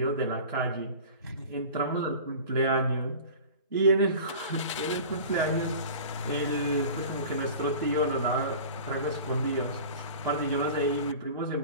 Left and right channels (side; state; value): both; inverted; correlation -0.38